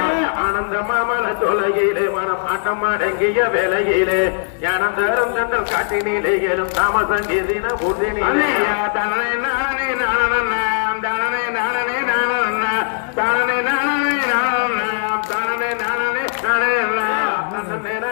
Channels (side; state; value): right; silent; 67 dB below the other